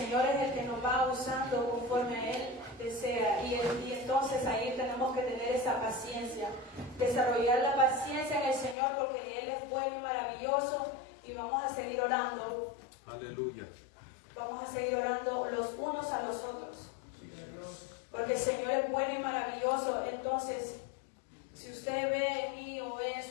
es el que nos va usando conforme a Él desea. Y entonces ahí tenemos que tener esa paciencia, desarrollar la paciencia en el Señor, porque Él es bueno y maravilloso. Y vamos a seguir orando. Aleluya. Vamos a seguir orando los unos a los otros, porque el Señor es bueno y maravilloso. Entonces, si usted ve en mí o ve en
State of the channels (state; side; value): drops out; right; at 8.8 s